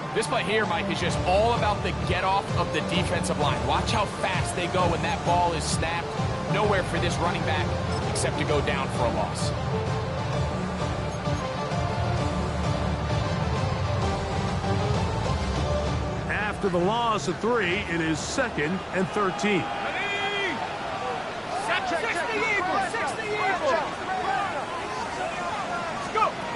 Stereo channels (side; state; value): both; identical; correlation 1.00